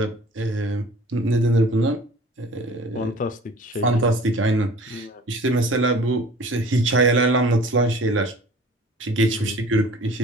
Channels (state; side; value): normal; both; correlation 0.46